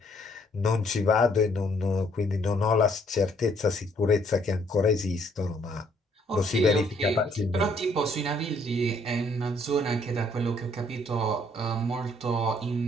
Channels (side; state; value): both; normal; correlation 0.66